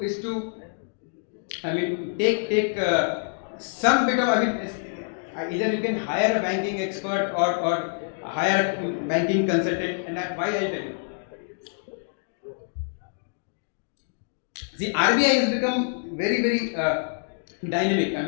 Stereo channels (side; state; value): right; silent; digital silence